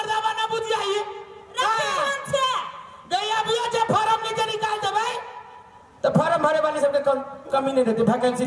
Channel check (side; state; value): both; identical; correlation 1.00